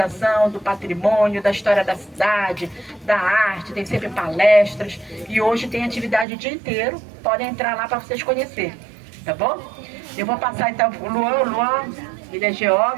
do patrimônio, da história da cidade, da arte, tem sempre palestras e hoje tem atividade o dia inteiro, podem entrar lá para vocês conhecerem, tá bom? Eu vou passar então o Luan, ele é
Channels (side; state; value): left; drops out; at 6.2 s